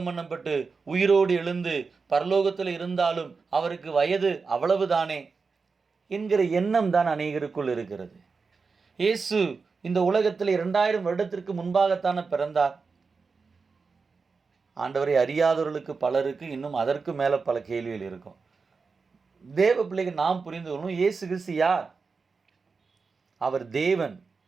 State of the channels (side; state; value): left; quieter; 4.7 dB